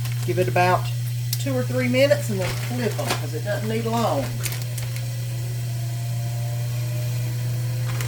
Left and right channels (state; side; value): identical; both; correlation 1.00